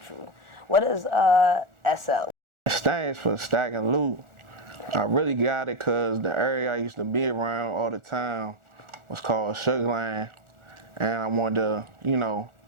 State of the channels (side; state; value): left; late; 1.4 ms